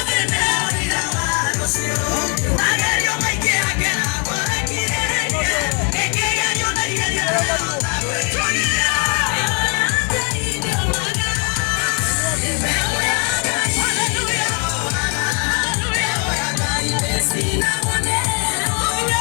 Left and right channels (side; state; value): right; quieter; 36.6 dB